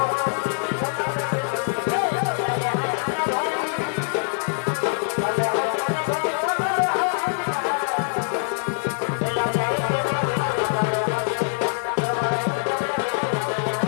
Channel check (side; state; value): right; silent; digital silence